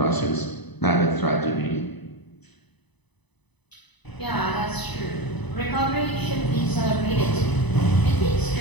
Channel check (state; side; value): late; right; 1.0 ms